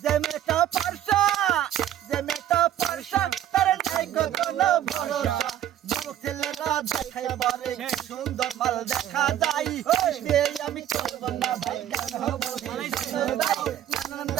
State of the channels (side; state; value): left; quieter; 11.5 dB